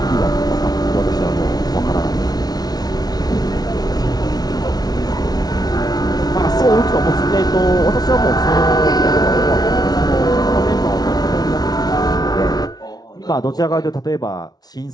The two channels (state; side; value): late; right; 0.19 ms